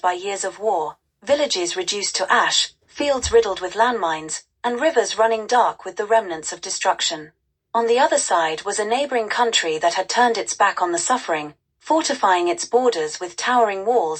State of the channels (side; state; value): both; identical; correlation 1.00